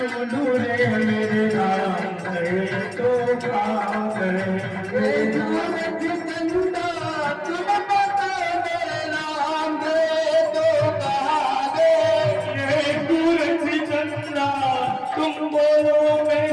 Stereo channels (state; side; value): identical; both; correlation 1.00